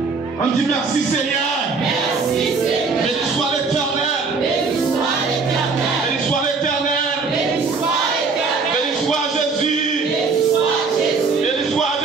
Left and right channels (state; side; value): quieter; left; 4.5 dB